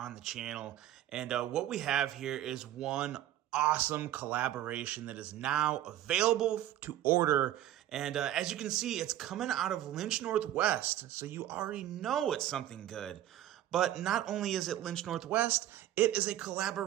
the channel. And what we have here is one awesome collaboration that is now available to order. And as you can see, it's coming out of Lynch Northwest, so you already know it's something good. But not only is it Lynch Northwest, it is a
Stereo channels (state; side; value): quieter; left; 12.8 dB